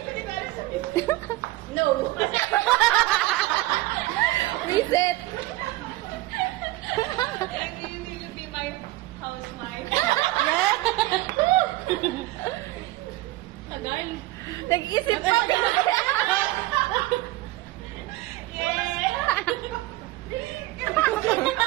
ko, di ba? Sabihin ko. No. Kumisit. You need to be my housewife. Yeah. Tagal. Nag-isip pa. Yeah.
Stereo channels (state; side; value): quieter; left; 18.3 dB